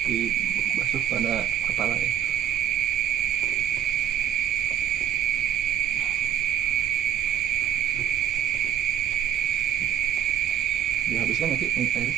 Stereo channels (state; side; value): quieter; left; 10.4 dB